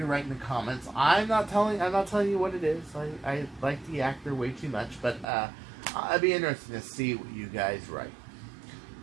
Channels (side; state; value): left; drops out; at 5.2 s